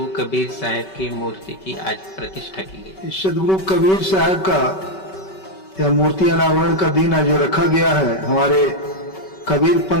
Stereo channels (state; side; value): late; right; 5.2 ms